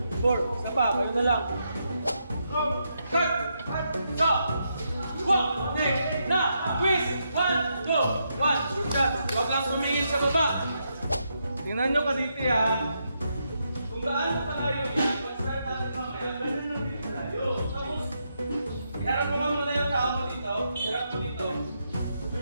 4. Isa pa, kayo na lang. Cut! So, 1, na! Twist! 1, 2, 1. Huwag lang sumingin sa baba. Tingnan nyo kaditi ha. Kung gaano kalayo yan, pag-start natin mamaya, ganun lang din kalayo. Tapos, iharap mo ka muna yung tao mo dito. Iharap mo dito.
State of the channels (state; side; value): inverted; both; correlation -0.81